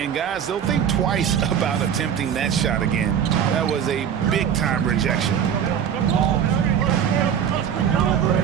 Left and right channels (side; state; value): left; quieter; 8.6 dB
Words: guys, they'll think twice about attempting that shot again. That was a big-time rejection.